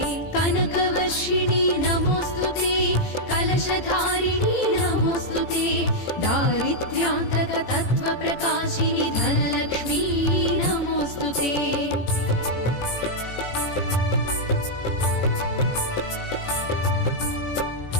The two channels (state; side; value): late; right; 18 ms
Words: कनकवर्षिणि नमोऽस्तुते, कलशधारिणि नमोऽस्तुते, दारिद्र्यान्तकतत्त्वप्रकाशिनि धनलक्ष्मी नमोऽस्तुते।